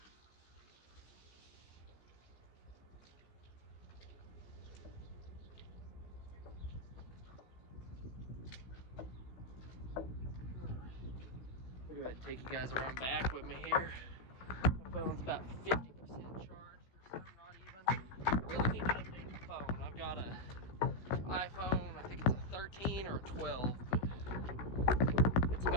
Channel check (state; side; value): late; right; 16 ms